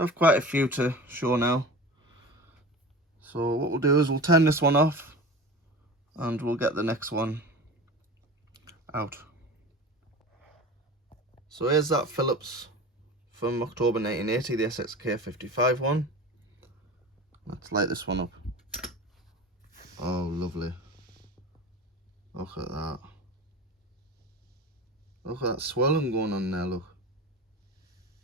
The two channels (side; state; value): both; normal; correlation 0.33